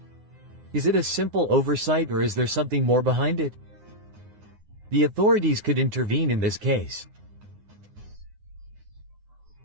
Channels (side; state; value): left; late; 9.7 ms